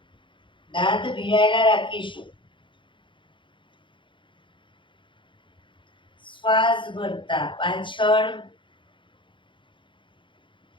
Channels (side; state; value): right; late; 0.24 ms